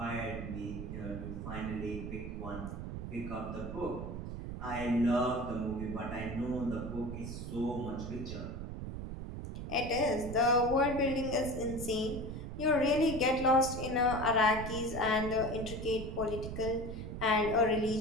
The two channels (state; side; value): noise; right; rumble, 7 dB below the sound